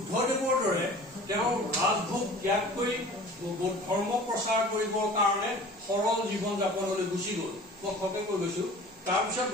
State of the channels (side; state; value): both; normal; correlation 0.43